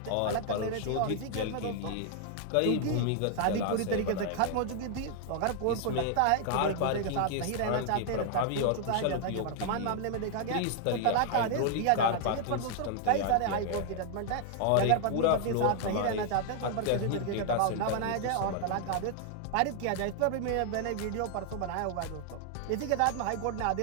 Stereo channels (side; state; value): both; different; correlation 0.00